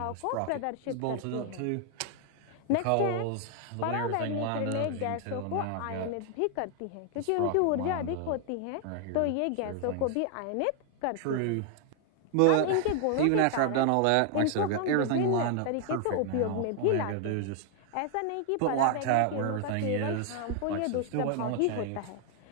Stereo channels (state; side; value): different; both; correlation 0.00